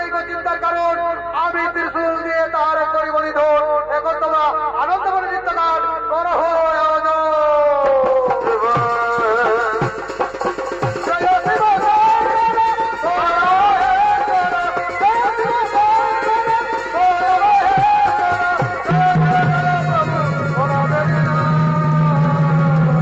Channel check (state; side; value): noise; right; hum, 25 dB below the sound